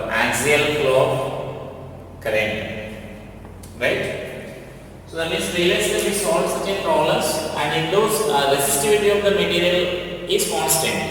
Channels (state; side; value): identical; both; correlation 1.00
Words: of current, right? So that means previously we solved such a problems, and in those resistivity of the material is constant.